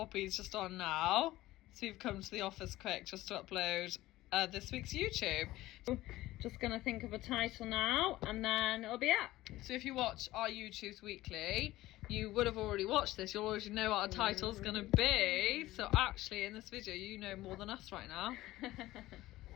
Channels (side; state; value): right; quieter; 16.8 dB